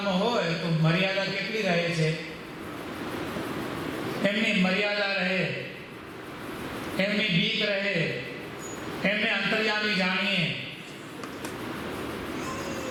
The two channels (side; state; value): both; identical; correlation 1.00